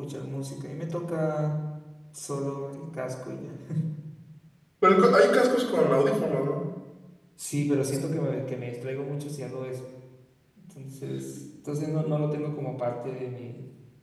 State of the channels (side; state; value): both; identical; correlation 1.00